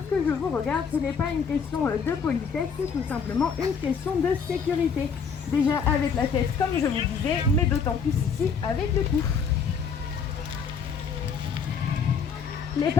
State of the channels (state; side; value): quieter; right; 6.1 dB